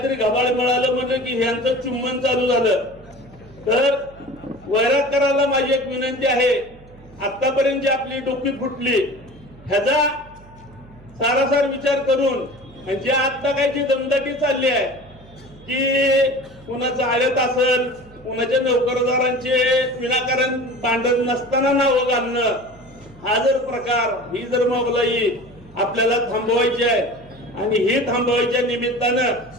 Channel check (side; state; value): right; noise; hum, 23 dB below the sound